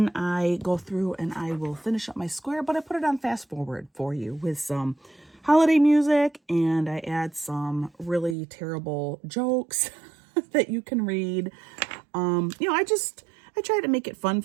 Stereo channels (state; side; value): drops out; left; at 8.3 s